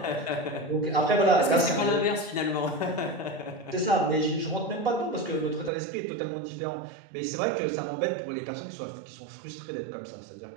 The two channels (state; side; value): drops out; left; at 5.7 s